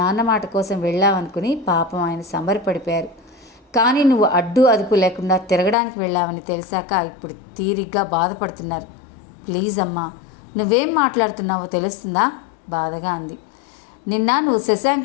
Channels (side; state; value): right; drops out; at 5.8 s